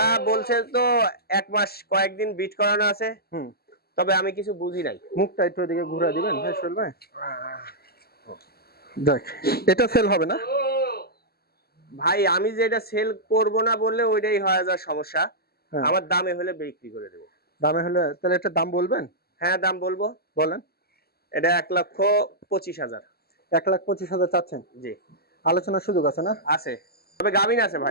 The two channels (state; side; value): late; right; 0.46 ms